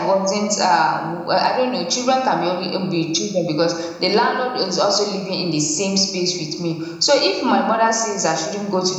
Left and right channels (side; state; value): both; identical; correlation 1.00